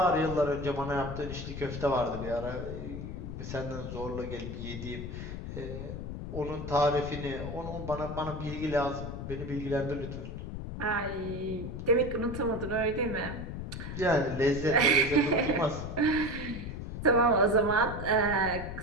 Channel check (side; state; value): left; noise; rumble, 7 dB below the sound